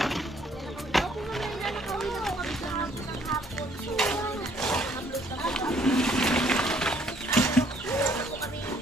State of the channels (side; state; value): both; normal; correlation 0.64